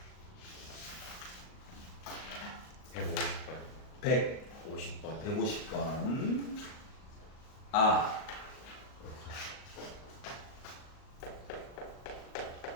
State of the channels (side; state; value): right; late; 38 ms